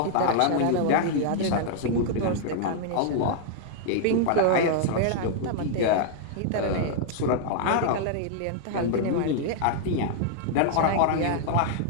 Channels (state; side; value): different; both; correlation -0.01